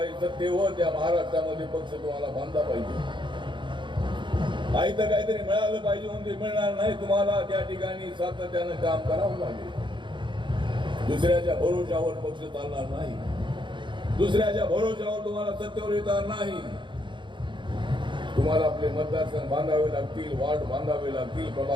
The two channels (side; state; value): left; late; 0.23 ms